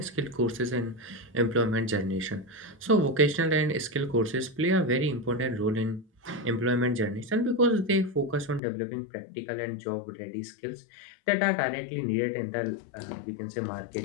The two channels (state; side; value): drops out; right; at 8.6 s